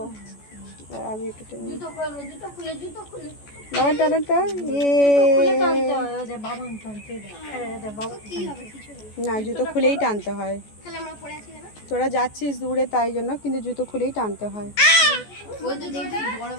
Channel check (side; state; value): right; late; 14 ms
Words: আমি একটু টেনে নিই। বাবা টানেন তো। না, জুতো খুলেই টানতে হয়। তোরা যাচ্ছিস দূরে তাই জন্য, কিন্তু জুতো খুলেই টানতে হয়। ওই তো দেখবি বড়